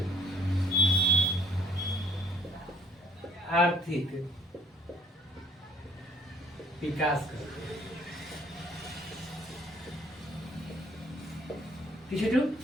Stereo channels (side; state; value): both; normal; correlation 0.59